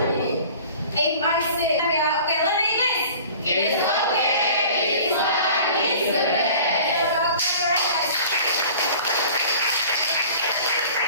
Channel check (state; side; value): inverted; both; correlation -0.45